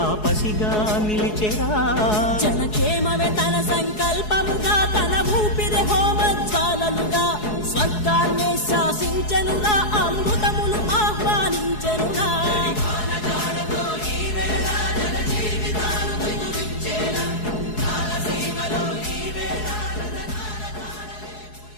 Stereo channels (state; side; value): late; right; 4.7 ms